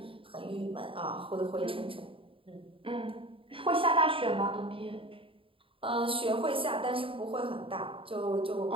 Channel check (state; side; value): late; left; 0.26 ms